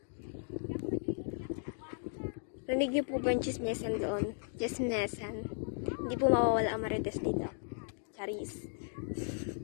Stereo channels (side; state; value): right; silent; digital silence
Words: Rinig niyo po ba yung chismesan doon? Chismesan. Hindi po mawawala ang marites dito. Charis.